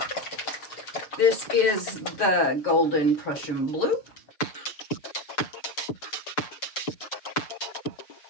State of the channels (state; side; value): late; right; 6.6 ms